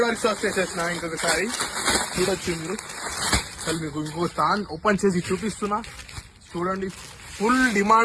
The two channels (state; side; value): identical; both; correlation 1.00